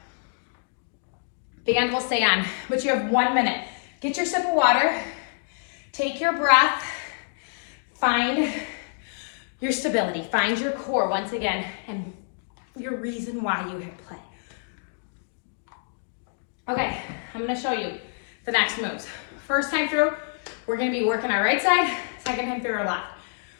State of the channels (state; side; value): silent; right; digital silence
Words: Band will stay on, but you have 1 minute. Get your sip of water, take your breath, find your stability, find your core once again, and your reason why you hit play. Okay, I'm gonna show you the next moves. First time through, we're gonna be working our right side, second time through our left.